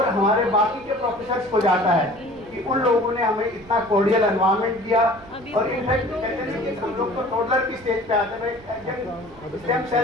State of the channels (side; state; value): right; noise; rumble, 23 dB below the sound